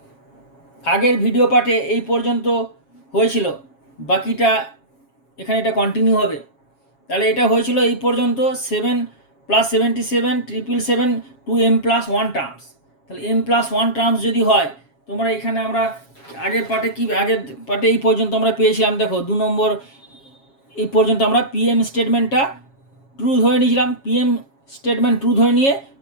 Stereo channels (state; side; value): late; right; 7.3 ms